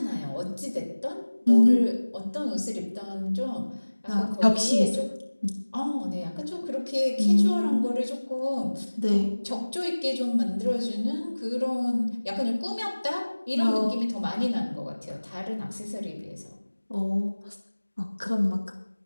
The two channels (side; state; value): both; inverted; correlation -1.00